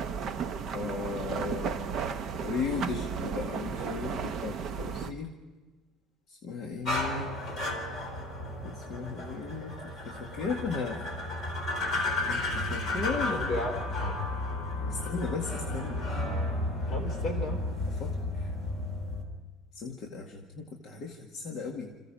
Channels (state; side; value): normal; both; correlation 0.42